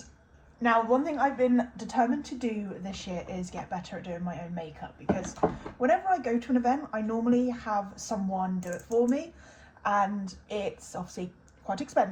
now one thing I've been determined to do this year is get better at doing my own makeup, because whenever I go to an event I normally have someone do it for me, and it's obviously quite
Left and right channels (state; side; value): identical; both; correlation 1.00